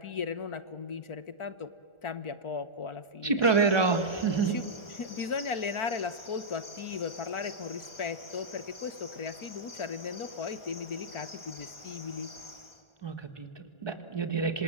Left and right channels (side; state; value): right; late; 1.4 ms